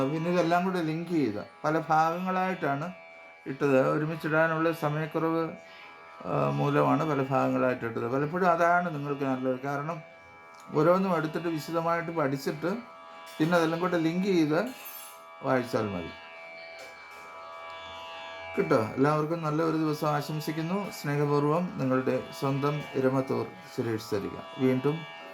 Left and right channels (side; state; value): both; identical; correlation 1.00